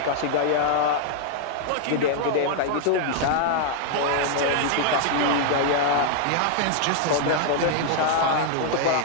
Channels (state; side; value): different; both; correlation 0.00